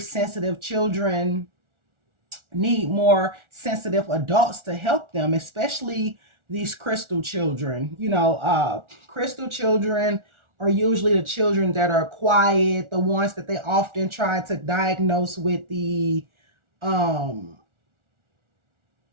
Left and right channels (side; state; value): left; late; 1.4 ms